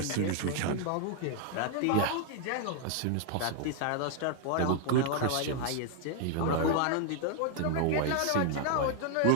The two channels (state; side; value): different; both; correlation 0.00